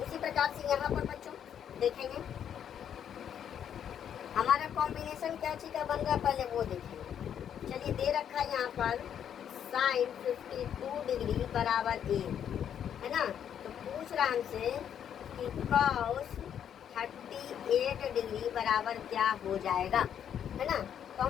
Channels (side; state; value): right; quieter; 9.0 dB